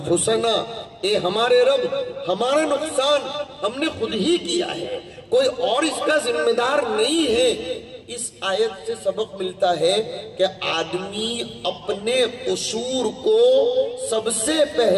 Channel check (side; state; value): both; identical; correlation 1.00